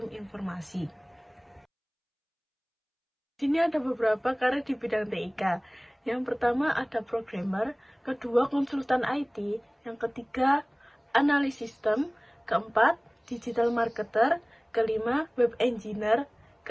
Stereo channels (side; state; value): both; identical; correlation 1.00